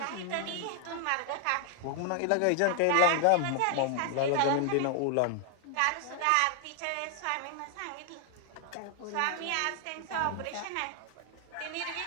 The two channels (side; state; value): both; different; correlation 0.00